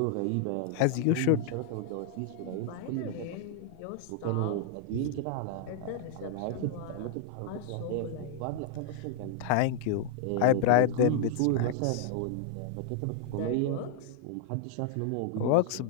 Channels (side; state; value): both; different; correlation 0.00